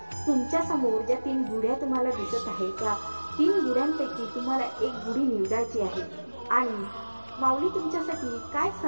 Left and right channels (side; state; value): both; inverted; correlation -1.00